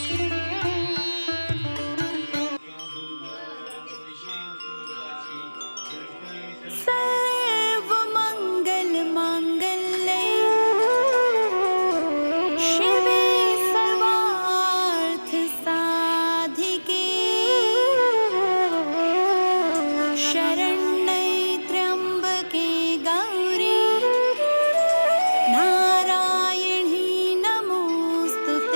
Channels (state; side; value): inverted; both; correlation -1.00